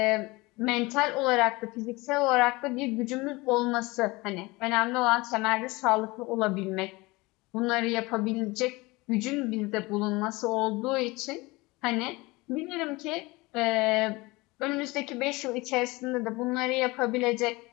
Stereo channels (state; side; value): quieter; right; 22.9 dB